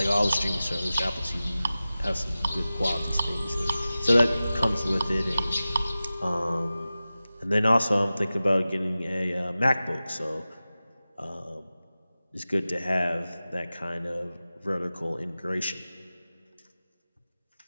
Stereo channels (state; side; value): inverted; both; correlation -0.96